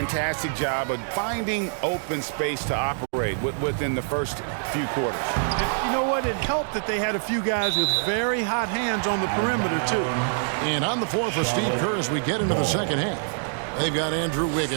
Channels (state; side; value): silent; left; digital silence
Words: job of finding open space to operate within the first few quarters. You know what? It helped that they had a few guys with very hot hands on the perimeter, too. And on the floor for Steve Kerr as we get into the second half. They've got Andrew